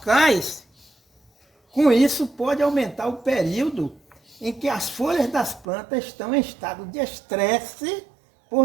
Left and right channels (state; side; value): drops out; left; at 5.7 s